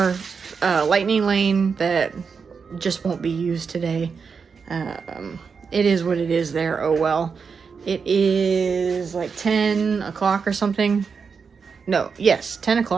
lightning lane that just won't be used today. It is what it is there. Oh well. It is like 10 o'clock or something. No, yes, 10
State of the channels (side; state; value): left; quieter; 5.6 dB